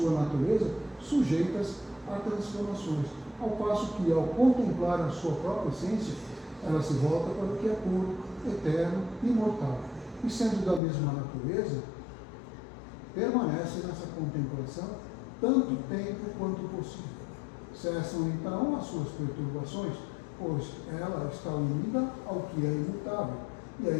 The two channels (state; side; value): drops out; right; at 10.8 s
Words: natureza, sujeitas a transformações, ao passo que, ao contemplar a sua própria essência, ela se volta para o que é puro, eterno e imortal, e sendo da mesma natureza, permanece nessa contemplação tanto tempo quanto possível. Cessam então as suas perturbações, pois ela está unida ao que é imutável, e a